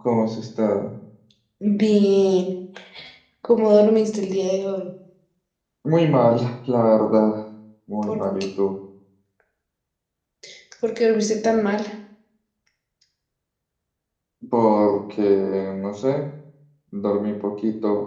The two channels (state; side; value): identical; both; correlation 1.00